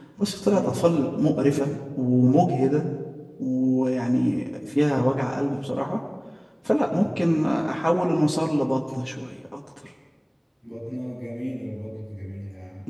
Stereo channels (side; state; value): both; identical; correlation 1.00